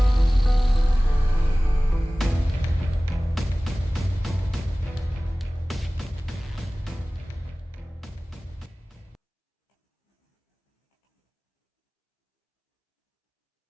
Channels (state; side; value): normal; both; correlation 0.98